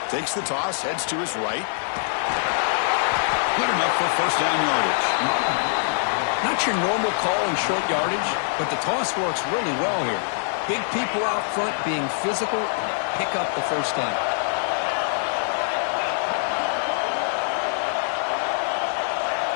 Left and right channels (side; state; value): right; silent; 63 dB below the other